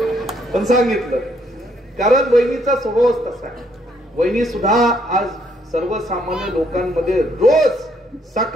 पण सांगितलं कारण वहिनीचा स्वभावच तसा आहे. वहिनी सुद्धा आज सर्वसामान्य लोकांमध्ये रोज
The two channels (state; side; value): normal; both; correlation 0.70